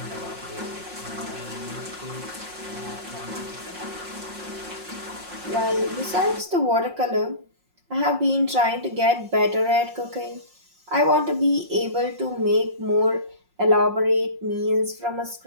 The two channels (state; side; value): late; left; 5.6 ms